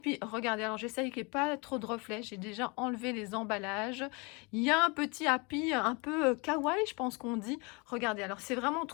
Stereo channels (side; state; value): right; quieter; 29.4 dB